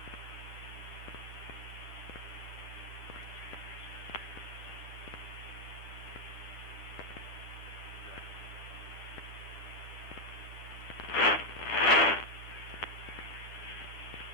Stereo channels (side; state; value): right; late; 10 ms